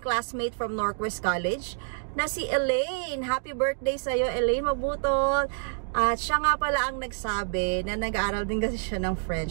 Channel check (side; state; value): left; silent; digital silence